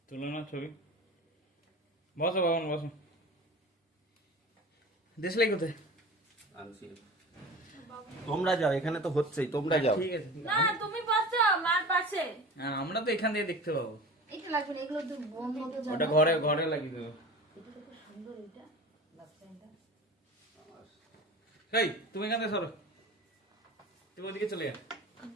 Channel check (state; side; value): normal; both; correlation 0.35